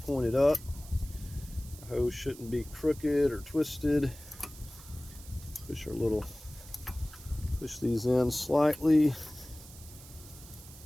up. The hose shouldn't be crooked or twisted. Push these in slightly.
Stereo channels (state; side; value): noise; right; hiss, 18 dB below the sound